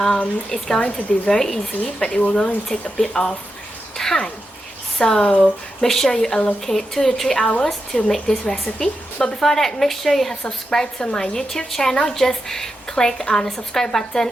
It's going to be very easy, but it will going to take a bit of time. So make sure you allocate 2 to 3 hours to make this recipe. But before that, make sure you have subscribed to my YouTube channel. Just click on the subscribe button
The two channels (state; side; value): normal; both; correlation 0.88